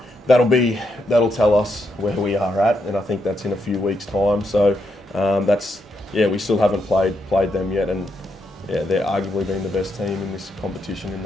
that'll tell us where we are at, and I think that's in a few weeks' time. So we still haven't played them yet, and they're arguably been the best team in this competition in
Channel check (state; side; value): normal; both; correlation 0.80